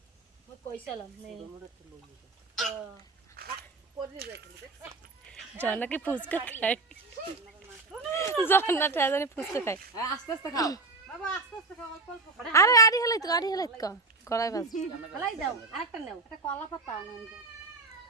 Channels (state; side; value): quieter; left; 3.4 dB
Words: জন্নাকে ফুচকা খায়, জন্না জানি ফুচকা খায়। আস্তে আস্তে খাও বাবা, আস্তে আস্তে খাও, অল্প অল্প করে। আরে আড়ি হেলাই তো কড়াই বাজ। হেলাই দাও, আরেকটা নাও, একটা কলা পাতা আনেন।